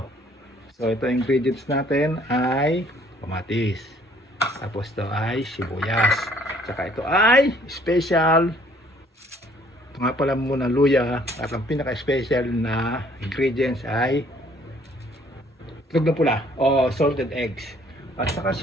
So ito ingredients natin ay kamatis. Tapos ito ay sibuyas. Saka ito ay special. Ito nga pala muna luya. At ang pinaka-special na ingredients ay itlog na pula o salted eggs. At saka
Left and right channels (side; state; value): both; normal; correlation 0.61